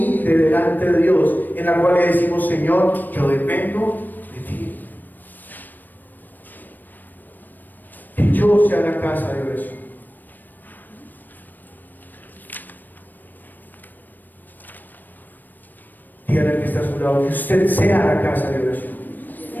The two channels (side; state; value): right; late; 0.089 ms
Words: delante de Dios, en la cual le decimos: Señor, yo dependo de ti. Que yo sea la casa de oración. Dígale al que está a su lado que usted sea la casa de oración.